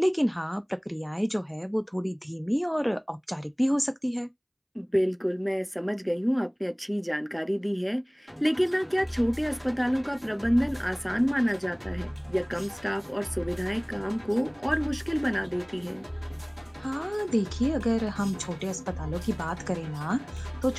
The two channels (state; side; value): identical; both; correlation 1.00